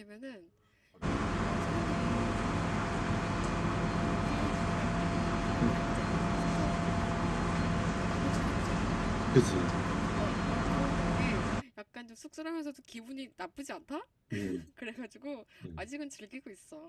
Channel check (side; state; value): both; identical; correlation 1.00